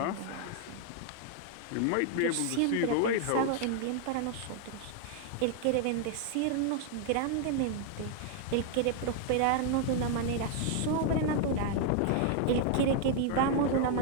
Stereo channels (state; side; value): different; both; correlation 0.00